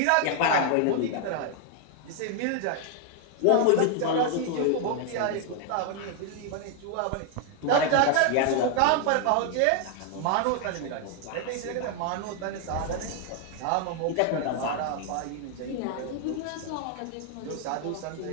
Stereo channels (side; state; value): both; different; correlation 0.00